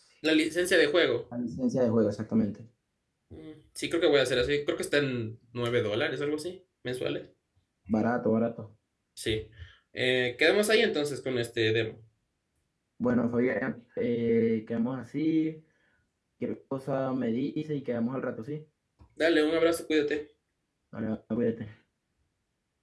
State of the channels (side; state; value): both; identical; correlation 1.00